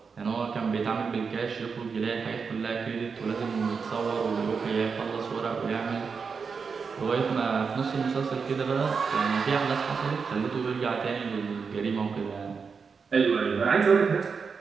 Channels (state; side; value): quieter; left; 5.5 dB